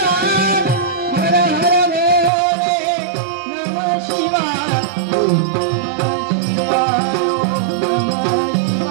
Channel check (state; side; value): drops out; left; at 2.3 s